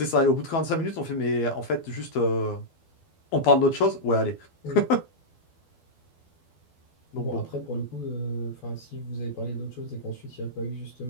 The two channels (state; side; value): late; right; 12 ms